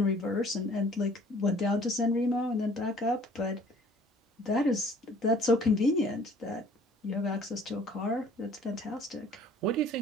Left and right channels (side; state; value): both; normal; correlation 0.54